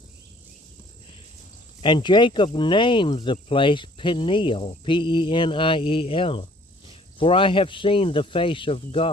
And Jacob named the place Peniel, Peniel, for I have seen the face of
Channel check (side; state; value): both; normal; correlation 0.57